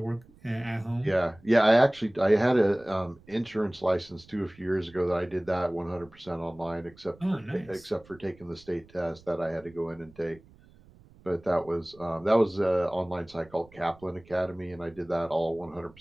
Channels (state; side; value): noise; right; rumble, 25 dB below the sound